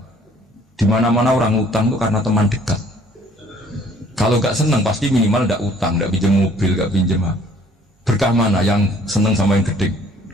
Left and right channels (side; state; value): both; normal; correlation 0.58